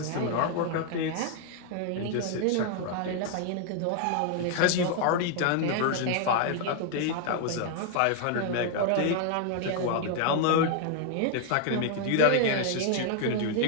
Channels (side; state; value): both; different; correlation 0.00